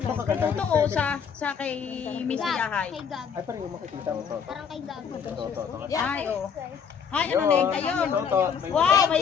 Katuto o sa kay Miss Hayahay. Kay Gab. Ay, parang yung makikita mo Toto. Parang kay Gab. Kay Toto. Ay oh. Ay ano na yun ayun. Toto. Wow, Thank may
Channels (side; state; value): right; quieter; 6.9 dB